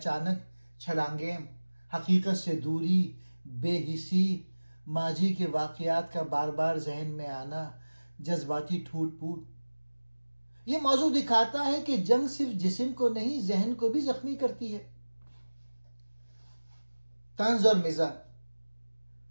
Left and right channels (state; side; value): inverted; both; correlation -1.00